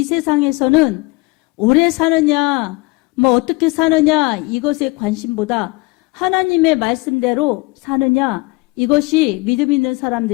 세상에서는 오래 사느냐, 어떻게 사느냐, 이것에 관심보다 하나님의 말씀대로 사느냐, 이것이 믿음 있는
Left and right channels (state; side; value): quieter; right; 24.4 dB